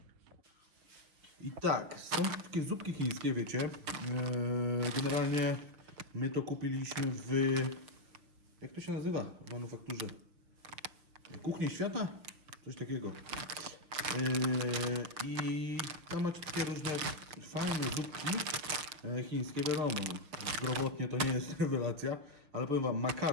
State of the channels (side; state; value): left; late; 6.2 ms